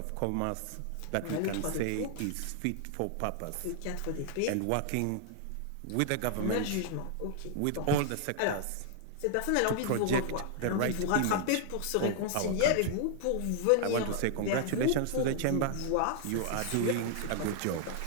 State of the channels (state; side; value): different; both; correlation 0.00